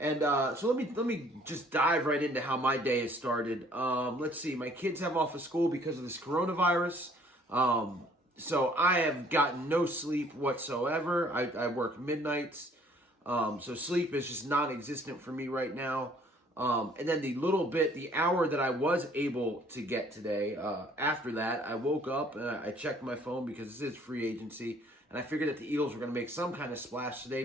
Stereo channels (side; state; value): both; normal; correlation 0.59